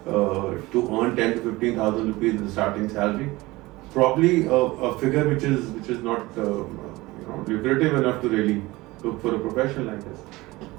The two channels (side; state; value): left; quieter; 20.4 dB